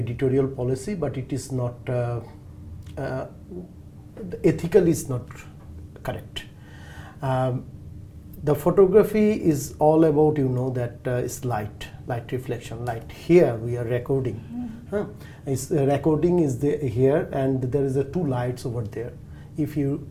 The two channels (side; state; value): both; identical; correlation 1.00